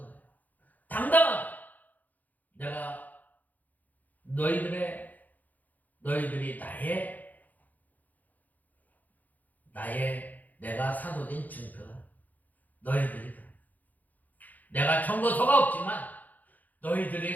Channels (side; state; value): right; late; 0.081 ms